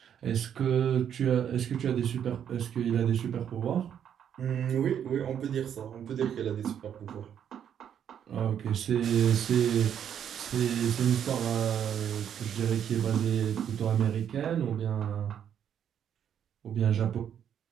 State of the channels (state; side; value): quieter; left; 9.0 dB